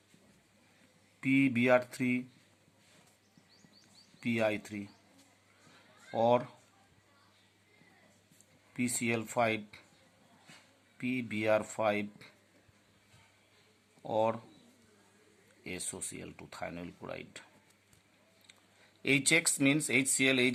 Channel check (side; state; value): both; identical; correlation 1.00